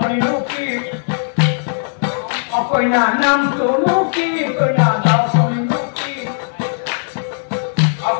কি অকণা নামটোনো কি কইনা ডালখনিনো কি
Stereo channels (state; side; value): silent; right; digital silence